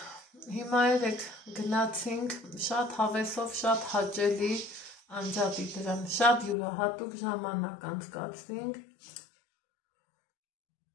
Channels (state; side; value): drops out; right; at 6.6 s